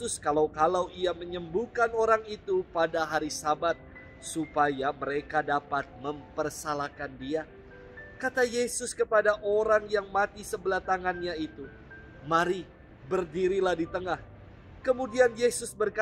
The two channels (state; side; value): identical; both; correlation 1.00